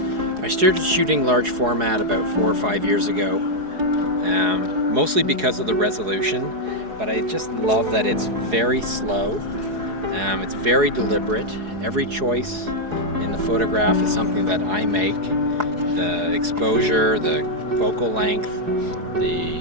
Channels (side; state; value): left; late; 4.8 ms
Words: I started shooting large format about 4 or 5 years ago, mostly because of the resolution, but I just love that it's very slow, it's very deliberate. Every choice in the photograph is something that I make. The exposure, the focal length,